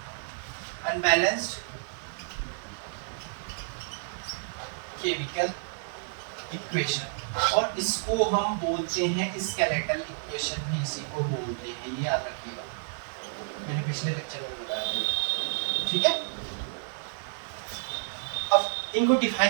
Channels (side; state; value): left; silent; digital silence